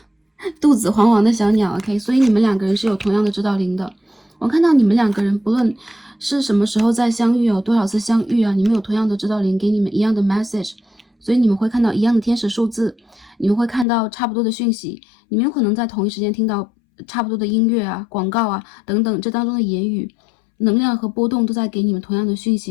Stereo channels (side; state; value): right; drops out; at 13.9 s